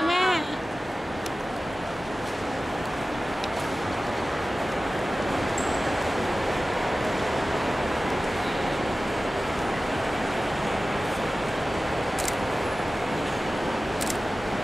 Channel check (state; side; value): normal; both; correlation 0.96